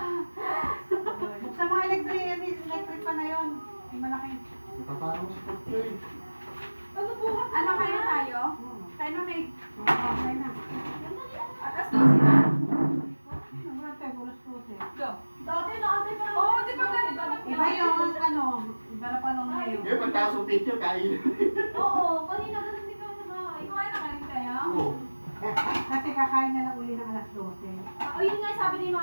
Buksan mga electric pa na yun. Yung malaki. Ipaparo mo sa picture. Ano po? Ano kayo tayo? Tayo na may Okay na. atas daw sila. Nagulat tayo, bulos-bulos eh. Go. Dati naantay pa Oo, di ba ganito lang Iba yung ano, iba na pa nung ngayon. Ngayon, pagtaas ng picture, kain. Oo, kanina ganun din kami sa bahay. Kumain na kanin kayo? Oo. Kasi kakain na lang uli ng alas 12. O yun nga sabi ni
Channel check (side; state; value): both; inverted; correlation -1.00